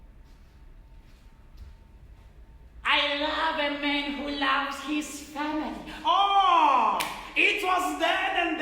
I love a man who loves his family. oh, it was then and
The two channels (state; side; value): identical; both; correlation 1.00